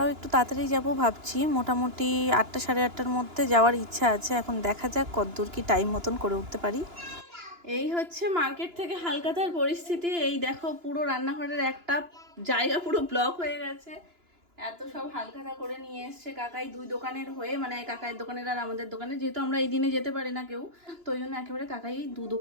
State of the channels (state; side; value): late; left; 2.9 ms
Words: একটু তাড়াতাড়ি যাব ভাবছি, মোটামুটি 8টা 8:30-র মধ্যে যাওয়ার ইচ্ছা আছে। এখন দেখা যাক কতদূর কি টাইম মতন করে উঠতে পারি। এই হচ্ছে মার্কেট থেকে হালকাতার পরিস্থিতি। এই দেখো পুরো রান্নাঘরের একটা জায়গা পুরো ব্লক হয়ে গেছে, এত সব হালখাতা করে নিয়ে এসছে কাকাই দুই দোকানের হয়ে, মানে কাকাইয়ের দোকানের আর আমাদের দোকানে, যেহেতু আমরা এই দিনে যেতে পারি না কেউ, তো ওই জন্য একেবারে কাকাই দু